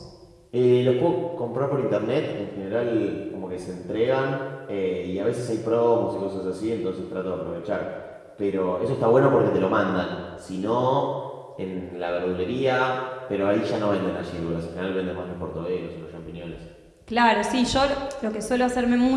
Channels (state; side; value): identical; both; correlation 1.00